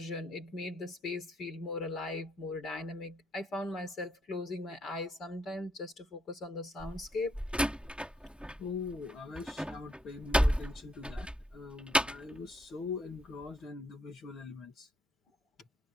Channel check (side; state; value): both; normal; correlation 0.75